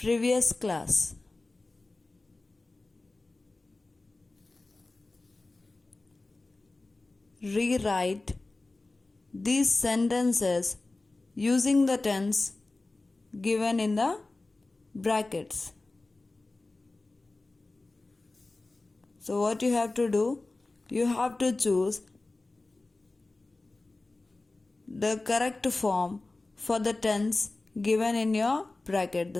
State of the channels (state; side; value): quieter; right; 3.1 dB